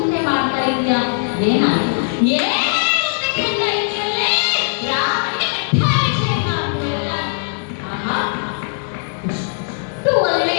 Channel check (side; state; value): right; silent; digital silence